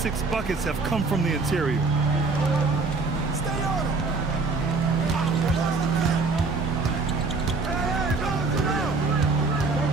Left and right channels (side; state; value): left; quieter; 4.0 dB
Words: 6 buckets have come from the interior.